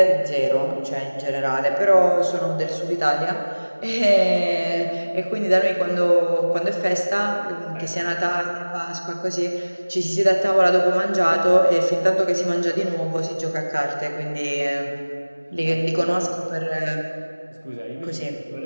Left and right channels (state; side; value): inverted; both; correlation -1.00